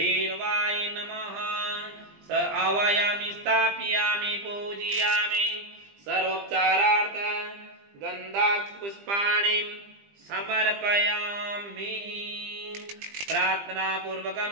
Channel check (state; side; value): late; left; 20 ms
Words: नमः स आवायामि स्थापयामि पूजयामि सर्वोपचारार्थ गन्धाक्षपुष्पाणि समर्पयामि